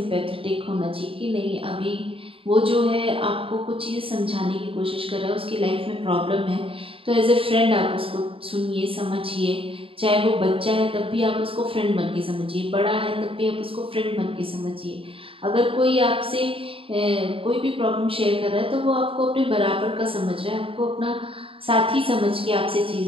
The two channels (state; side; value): late; left; 0.26 ms